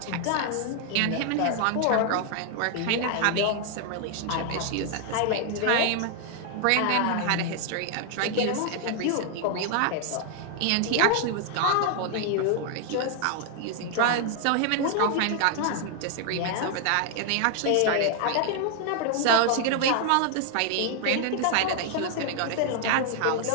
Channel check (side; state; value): both; different; correlation 0.00